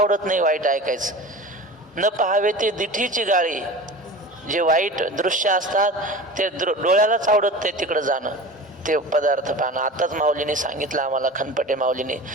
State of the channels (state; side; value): normal; both; correlation 0.35